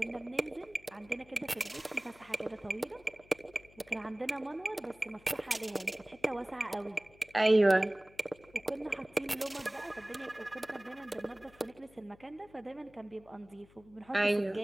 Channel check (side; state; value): left; noise; hum, 26 dB below the sound